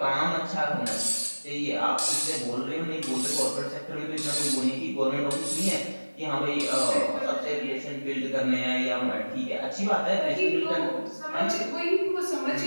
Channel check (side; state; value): both; inverted; correlation -1.00